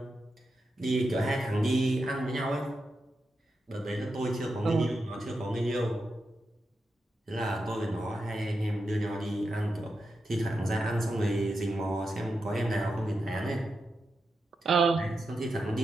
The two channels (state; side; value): normal; both; correlation 0.87